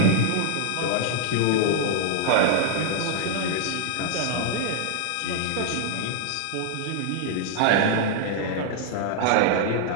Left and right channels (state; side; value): different; both; correlation 0.00